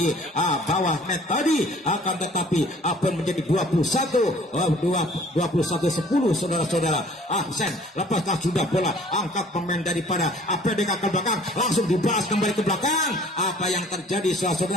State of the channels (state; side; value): normal; both; correlation 0.53